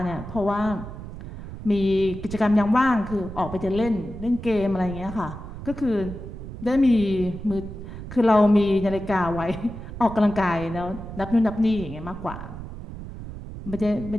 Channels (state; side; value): noise; right; rumble, 11 dB below the sound